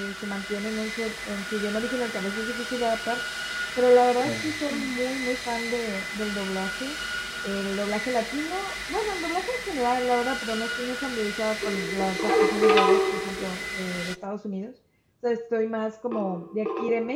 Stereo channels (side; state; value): both; identical; correlation 1.00